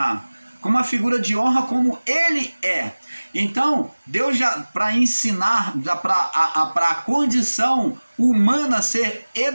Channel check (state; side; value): inverted; both; correlation -1.00